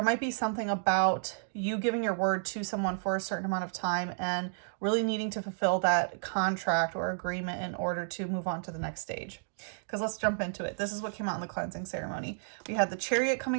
might be something about you giving your word to someone for a certain amount of time and really needing to fulfill that contract or agreement in order to move on to the next stage. Because let's jump into it. This is what came out in the cleansing ceremony. We had the Chariot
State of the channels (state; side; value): silent; left; digital silence